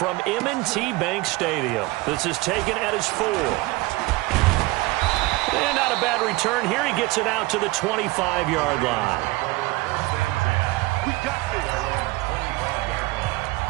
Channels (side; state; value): left; quieter; 21.3 dB